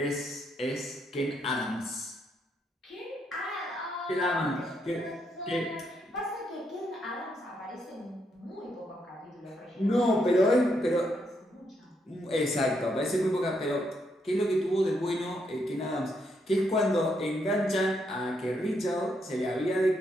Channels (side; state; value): both; normal; correlation 0.77